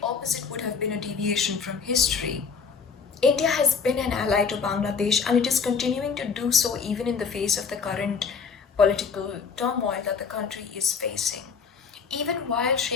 opposite would have been a deviation from history. India has been an ally to Bangladesh and it is continuing to do so even in the face of the current political turmoil that the country is facing. Even while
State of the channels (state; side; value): quieter; right; 5.8 dB